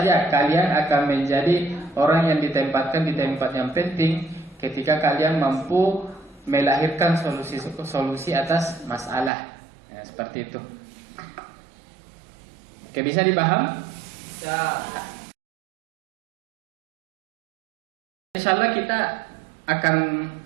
kalian akan menjadi orang yang ditempatkan di tempat yang penting ketika kalian mampu melahirkan solusi atas masalah. Ya, seperti itu. Oke, bisa dipaham? Insya Allah kita akan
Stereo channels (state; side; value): drops out; left; at 9.3 s